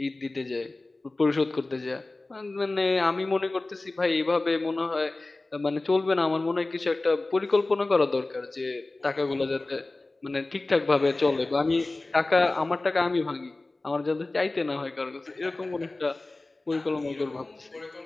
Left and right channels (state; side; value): quieter; right; 3.1 dB